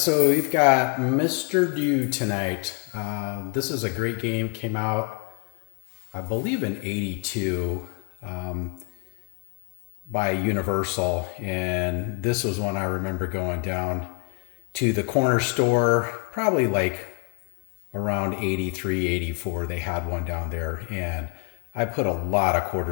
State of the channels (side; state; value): right; quieter; 38.2 dB